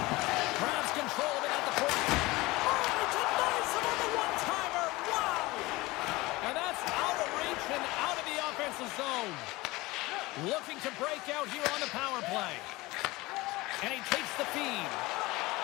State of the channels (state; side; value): quieter; right; 21.1 dB